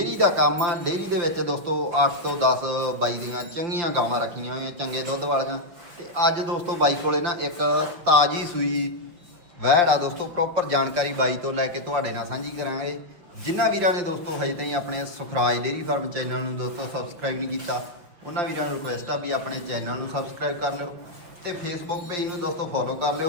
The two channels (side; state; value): left; late; 5.9 ms